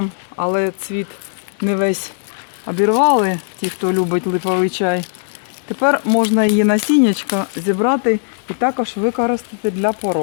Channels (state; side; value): silent; right; 57 dB below the other